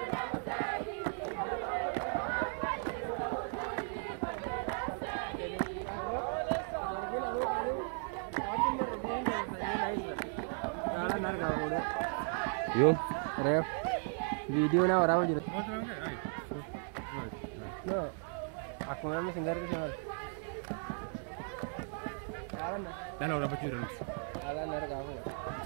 Yo, ref. Video na orang jadi. No, aku memang singgah ke sana. Dah lah orang bujur. Alah nara kamu.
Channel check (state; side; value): silent; left; 54 dB below the other